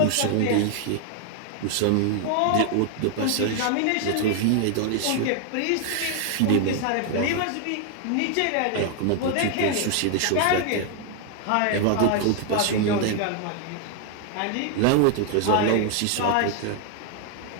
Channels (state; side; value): different; both; correlation 0.00